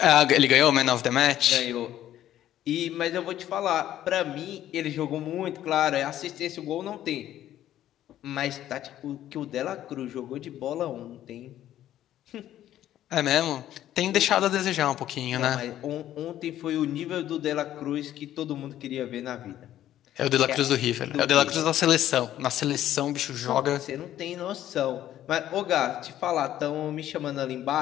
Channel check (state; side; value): quieter; right; 12.3 dB